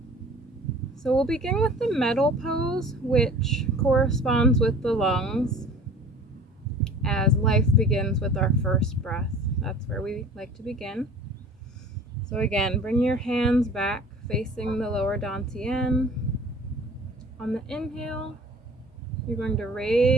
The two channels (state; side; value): normal; both; correlation 0.46